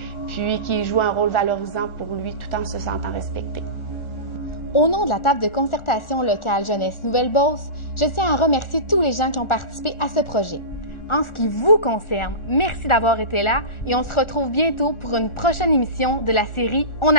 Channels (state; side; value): late; right; 1.4 ms